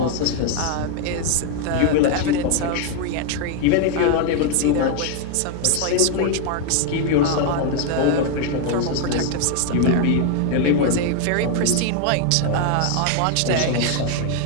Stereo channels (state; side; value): different; both; correlation 0.01